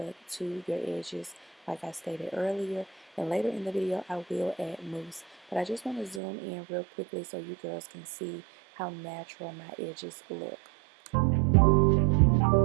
to your edges like I stated earlier. And later in the video, I will add mousse. But I just want to zoom in real quickly so you girls can see how natural my edges look.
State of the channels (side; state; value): left; drops out; at 6.2 s